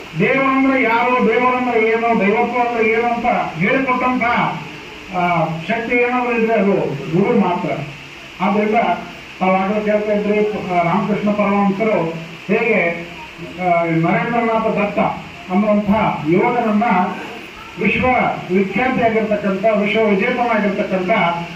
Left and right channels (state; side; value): identical; both; correlation 1.00